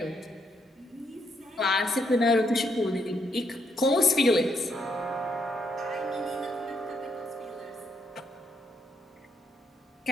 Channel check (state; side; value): normal; both; correlation 0.76